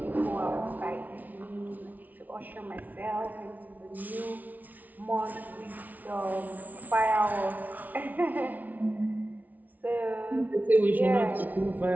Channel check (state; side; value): late; left; 0.077 ms